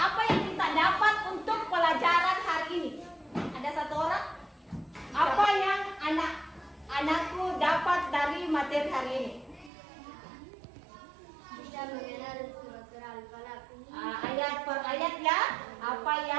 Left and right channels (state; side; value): drops out; left; at 9.7 s